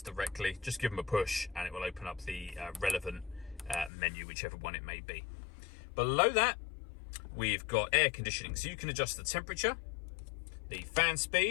directly. Just give them a push and it will open up the relevant menu, whichever one it may be. Below that, we've got air conditioning. So you can adjust the temperature, the fan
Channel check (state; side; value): drops out; right; at 3.9 s